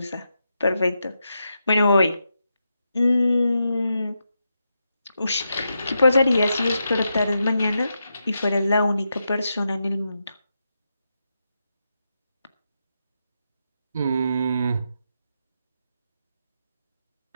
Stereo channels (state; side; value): inverted; both; correlation -0.85